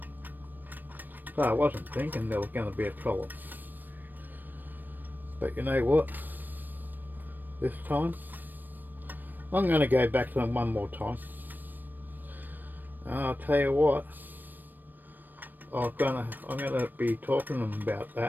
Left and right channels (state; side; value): late; left; 0.091 ms